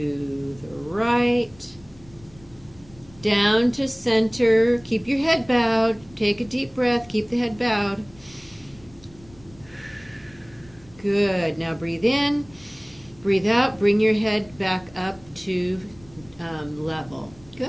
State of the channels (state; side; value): noise; left; rumble, 25 dB below the sound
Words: the right. Down to center. Keep your head bowed. Take a deep breath. Keep the head bowed. Good. Now breathe in. Breathe out. Bring your head back up to level.